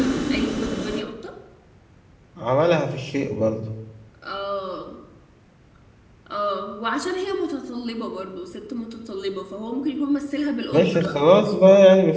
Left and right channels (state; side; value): identical; both; correlation 1.00